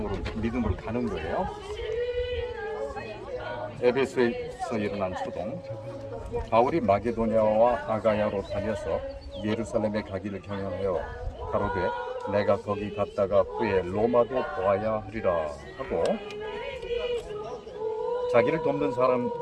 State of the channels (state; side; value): identical; both; correlation 1.00